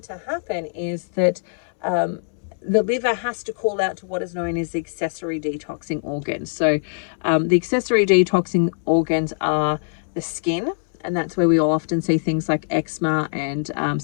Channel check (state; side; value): silent; right; 64 dB below the other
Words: to happen is that the liver has to call out to what is known as the accessory detoxing organs. So the accessory detoxing organs are the skin, and that's where we all often see things like eczema and